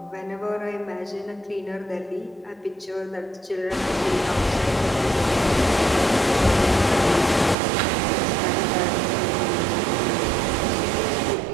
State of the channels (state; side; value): drops out; left; at 7.6 s